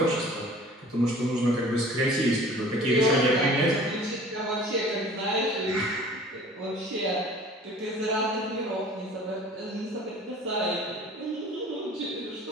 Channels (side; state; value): both; normal; correlation 0.46